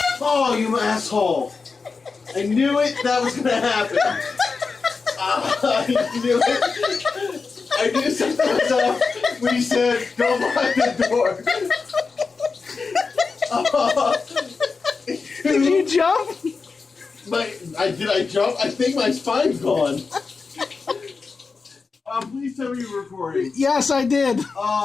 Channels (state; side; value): quieter; right; 4.6 dB